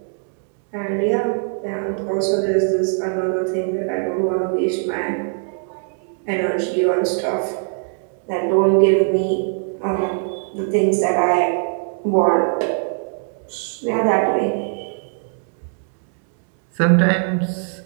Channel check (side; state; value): left; silent; 65 dB below the other